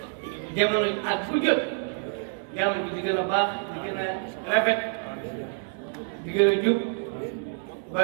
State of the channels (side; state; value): left; silent; 60 dB below the other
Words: jamono at bu jot jàmm bi di gën a baax di gën a rafet di gën a jub